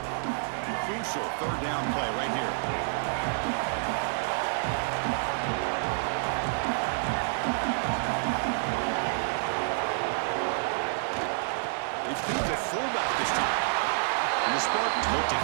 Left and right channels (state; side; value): silent; left; 57 dB below the other